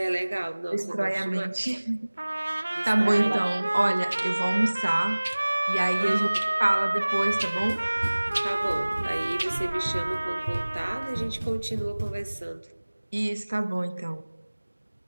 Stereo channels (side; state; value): both; inverted; correlation -1.00